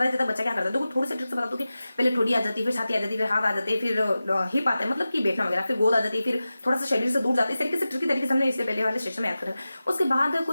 जाता है बच्चा क्या करता है। देखो थोड़ी सी ट्रिक से बता दो कि पहले ठोड़ी आ जाती है, फिर छाती आ जाती है, फिर हाथ आ जाते हैं, फिर हिप आता है, मतलब कि बैठना वगैरह, फिर गोद आ जाती है, फिर थोड़ा सा शरीर से दूर जाते हैं। इस तरीके से ट्रिकी तरीके से हमने इससे पहले वाले सेशन में याद करा। उसके बाद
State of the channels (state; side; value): inverted; both; correlation -0.95